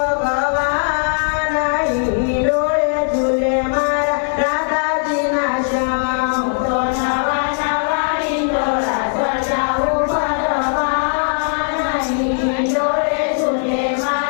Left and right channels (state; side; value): silent; right; 60 dB below the other